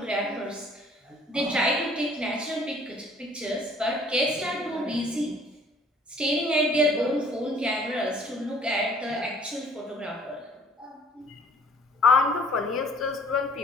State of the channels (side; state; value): both; normal; correlation 0.56